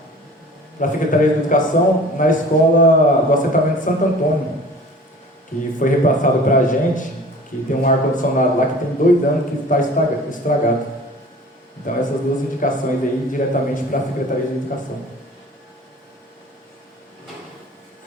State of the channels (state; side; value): normal; both; correlation 0.45